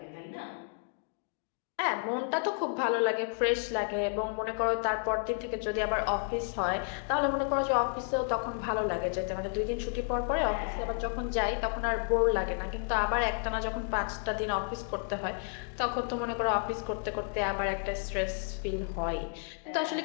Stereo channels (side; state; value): right; silent; 57 dB below the other